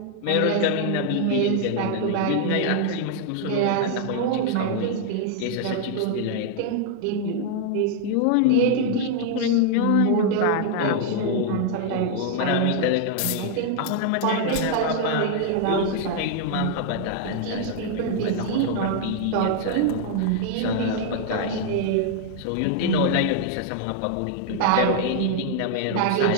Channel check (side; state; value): both; different; correlation 0.00